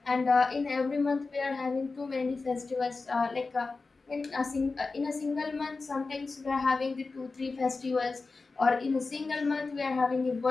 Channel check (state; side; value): quieter; right; 3.9 dB